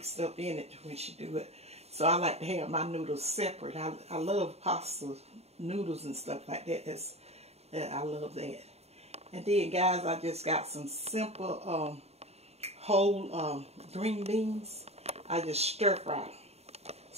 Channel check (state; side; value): late; left; 0.30 ms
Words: up in it when she do it. So I like to have my noodles separate. I love pasta noodles and stuff like that. I love that. And then guys, I just got some simple whole green beans. I just stir fry them.